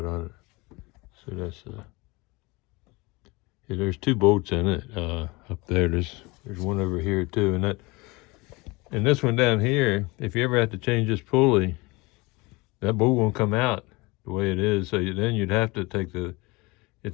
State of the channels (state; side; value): quieter; right; 24.5 dB